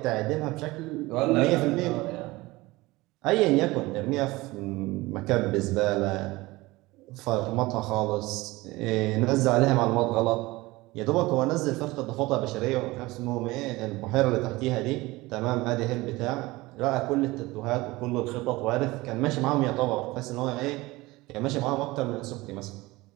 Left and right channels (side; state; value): left; quieter; 20.6 dB